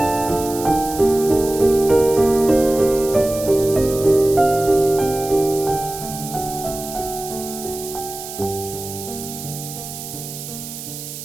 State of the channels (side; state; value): right; noise; hiss, 11 dB below the sound